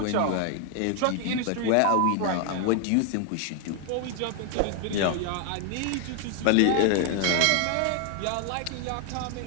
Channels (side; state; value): both; different; correlation 0.00